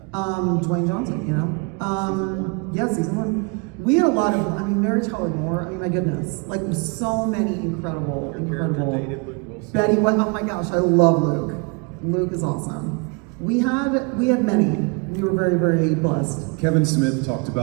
Dwayne Johnson, you know? Yeah, season 1. We had a lot of, I mean, Mary Tyler Moore, I mean, my goodness. Like, so many incredible. Betty, oh my gosh, I love Luke. Luke is awesome. We had many. We were very, very blessed. Kevin Smith talked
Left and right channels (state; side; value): quieter; left; 32.8 dB